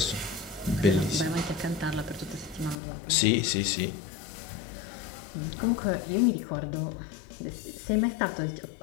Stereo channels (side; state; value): right; drops out; at 2.8 s